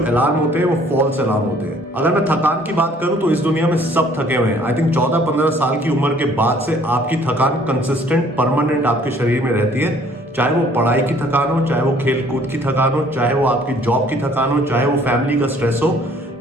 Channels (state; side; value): normal; both; correlation 0.58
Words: अलार्म होते हैं वो फॉल्स अलार्म होते हैं। अगर मैं थकान की बात करूं तो इस दुनिया में सब थके हुए हैं। आई थिंक 14-15 साल की उम्र के बाद से आपकी थकान कंसिस्टेंट, परमानेंट आपके शरीर में रहती है, चाहे वो पढ़ाई की थकान हो, चाहे वो खेल कूद की थकान हो, चाहे वो आपकी जॉब की थकान हो, चाहे वो फैमिली का स्ट्रेस हो।